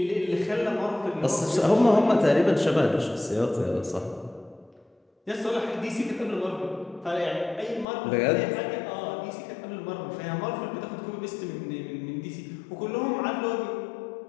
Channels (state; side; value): drops out; right; at 7.9 s